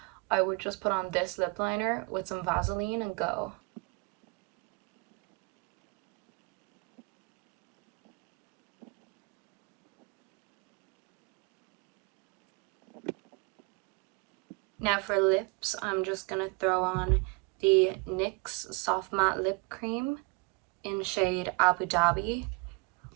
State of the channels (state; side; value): quieter; left; 30.2 dB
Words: I would just put on this lip liner with some Vaseline and go. Now for lips, I'm just gonna throw on the NYX Soft Matte Lip Cream in shade Abu Dhabi.